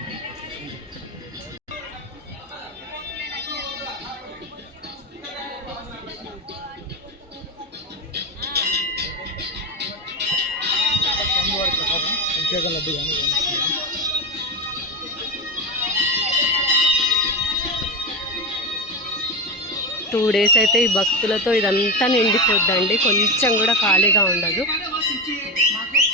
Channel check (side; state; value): both; normal; correlation 0.16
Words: అభిషేకం లడ్డు కానీ 2 days అయితే ఈ భక్తులతో ఇదంతా నిండిపోద్దండి. కొంచెం కూడా ఖాళీగా ఉండదు.